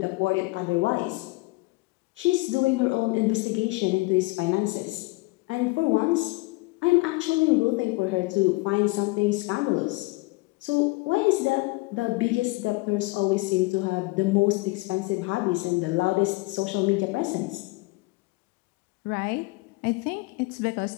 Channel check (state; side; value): quieter; right; 24.4 dB